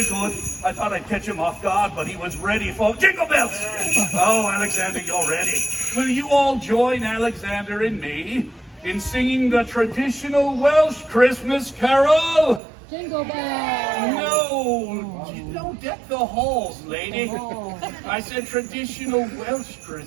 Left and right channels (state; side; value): drops out; left; at 12.6 s